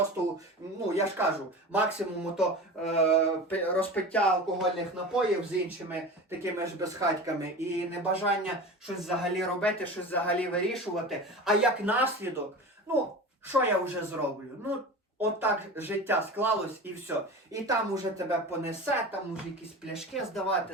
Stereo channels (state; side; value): normal; both; correlation 0.32